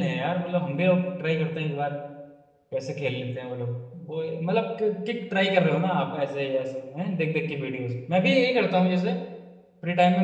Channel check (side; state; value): both; identical; correlation 1.00